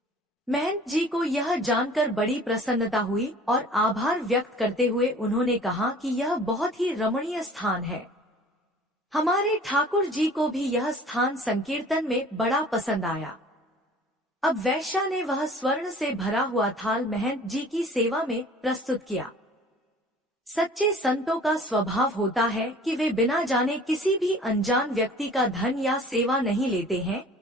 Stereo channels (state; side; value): normal; both; correlation 0.48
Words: महंत जी को यह जानकर बड़ी प्रसन्नता हुई और आभार व्यक्त करते हुए उन्होंने कहा कि यह बहुत ही रमणीय स्थान है। हमारे ठाकुर जी को भी यह स्थान संकीर्तन में बड़ा पसंद आया। अब वैश्या ने वह स्वर्ण से भरा हुआ थाल महंत जी की सेवा में प्रस्तुत किया। सच्चे संतों का स्वभाव होता है कि वे बिना जाने किसी भी अनजान व्यक्ति का धन या सेवा नहीं लेते हैं